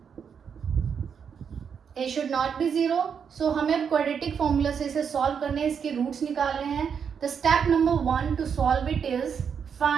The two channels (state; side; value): quieter; left; 7.0 dB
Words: a should not be 0. सो हमें अब क्वाड्रेटिक फॉर्मूला से इसे सॉल्व करने हैं, इसके रूट्स निकालने हैं. The step number 1 to solve it is